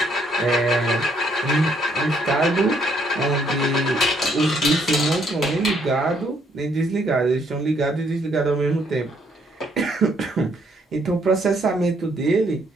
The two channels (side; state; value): both; normal; correlation 0.69